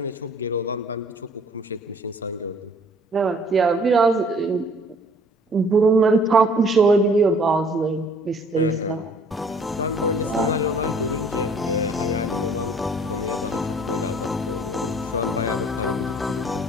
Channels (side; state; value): both; normal; correlation 0.56